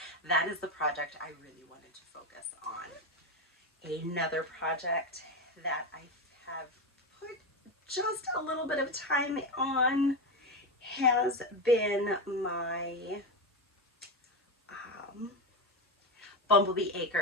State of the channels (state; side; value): normal; both; correlation 0.14